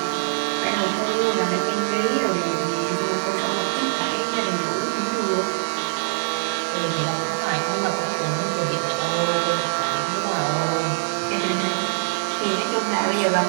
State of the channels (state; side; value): silent; left; 63 dB below the other